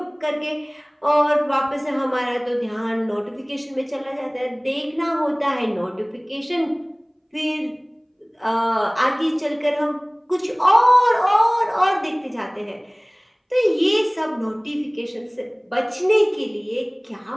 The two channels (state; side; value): identical; both; correlation 1.00